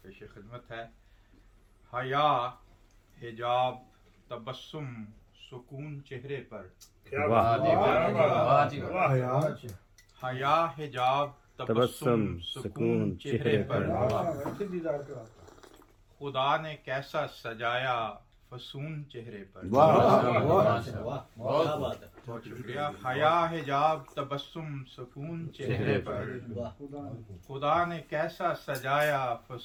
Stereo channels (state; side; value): identical; both; correlation 1.00